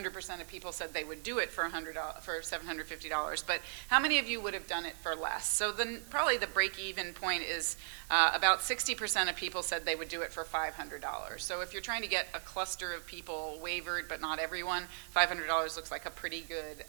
of people said they would do it for $750, but how many of you would have done it for less? So then probably the break-even point is about 60% of people said they would do it for $500. So if you're trying to get a cluster of people waivered, but not everyone, $500 looks like a pretty good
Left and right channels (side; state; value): left; silent; 53 dB below the other